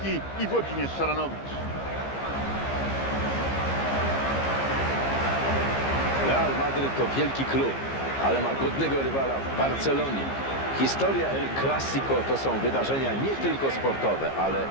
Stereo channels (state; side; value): late; right; 15 ms